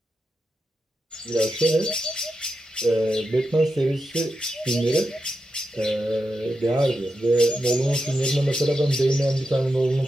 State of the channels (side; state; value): both; normal; correlation 0.88